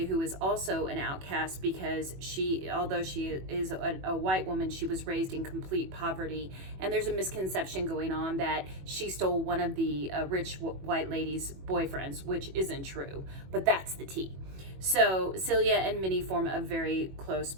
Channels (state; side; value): late; left; 21 ms